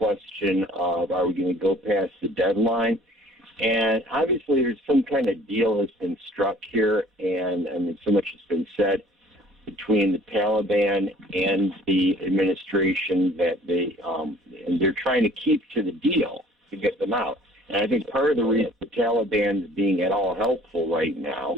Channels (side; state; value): both; normal; correlation 0.52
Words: of, are we going to go past the deadline? And obviously there's some kind of deal that's been struck here, and so much has been said between the Taliban and the administration that they're trying to keep to the deal to get them out. And I think part of the reason the Taliban is being at all helpful right now